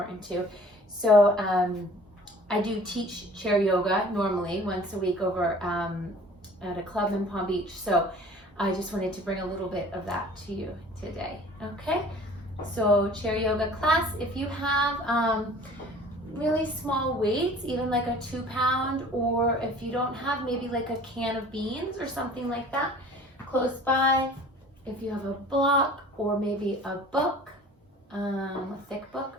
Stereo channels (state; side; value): normal; both; correlation 0.48